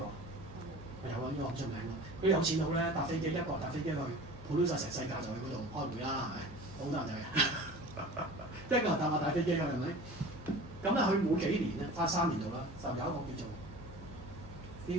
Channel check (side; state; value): both; normal; correlation 0.39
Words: 有啊，呢個好出名嘅。佢有錢佬咧搭飛機，一個搭飛機去，普通晒成世界就去嗰度開會啦，係咪？好多人就係，一個人搭大飛機㗎，係咪？咁咧，佢每幾年咧，花3年度啦，就有一個叫做